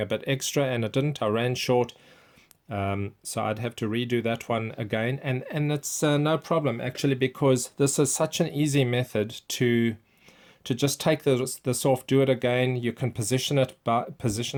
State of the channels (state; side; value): identical; both; correlation 1.00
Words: bit extra, and I didn't. I ran short, so I'd have to redo that one again, and it's no problem actually, because this is such an easy method to just take this off, do it again. You can position it